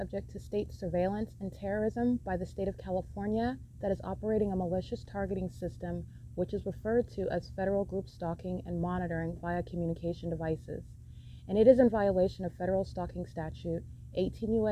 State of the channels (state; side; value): identical; both; correlation 1.00